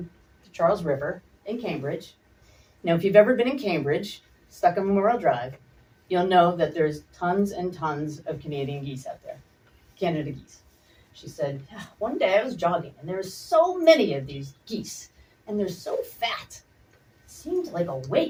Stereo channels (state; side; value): identical; both; correlation 1.00